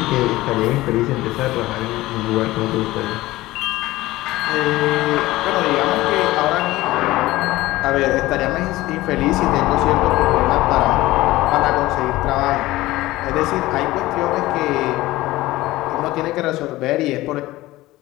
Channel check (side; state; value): right; quieter; 17.8 dB